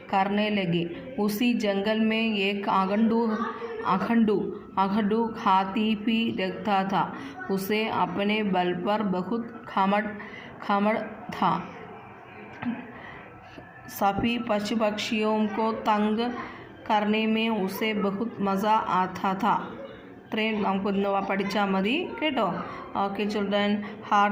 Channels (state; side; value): identical; both; correlation 1.00